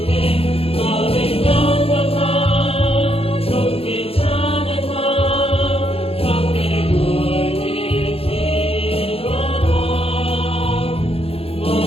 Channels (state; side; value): late; right; 0.28 ms